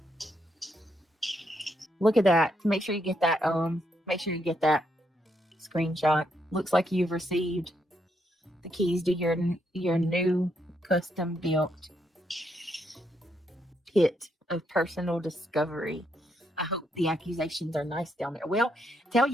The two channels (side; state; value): both; normal; correlation 0.77